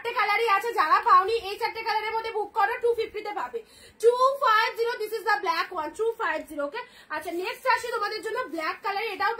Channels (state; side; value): identical; both; correlation 1.00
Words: কালারই আছে, যারা পাওনি এই 4টে কালারের মধ্যে বুক করো, 250 তে পাবে, 250, this is the black one, 250, ওকে। আচ্ছা, নেক্সট আসি তোমাদের জন্য ব্ল্যাক কালার, এটাও